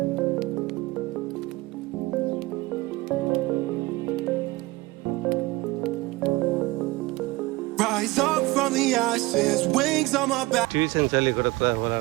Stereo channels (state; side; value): quieter; left; 21.2 dB